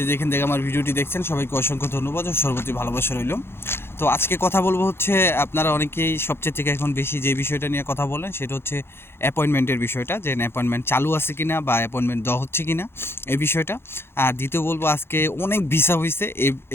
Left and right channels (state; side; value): late; right; 0.11 ms